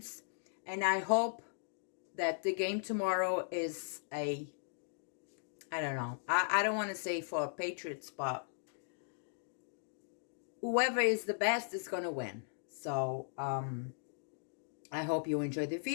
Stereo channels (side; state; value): right; silent; digital silence